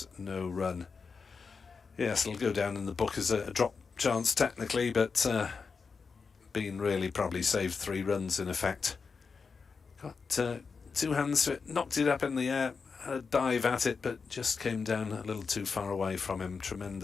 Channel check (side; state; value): right; quieter; 5.1 dB